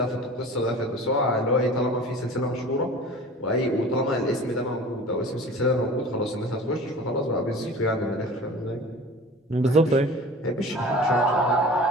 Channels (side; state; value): both; normal; correlation 0.40